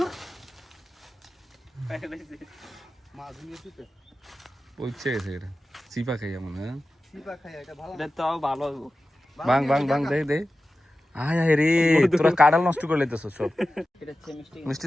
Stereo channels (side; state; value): both; normal; correlation 0.94